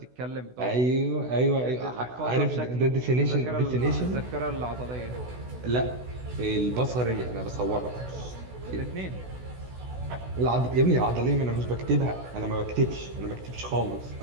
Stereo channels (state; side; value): late; left; 16 ms